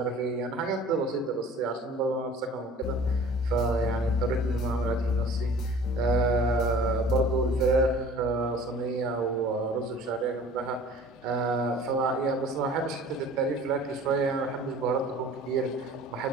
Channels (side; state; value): both; normal; correlation 0.46